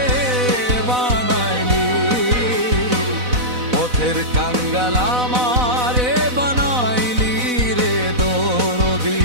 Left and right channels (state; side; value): late; left; 4.0 ms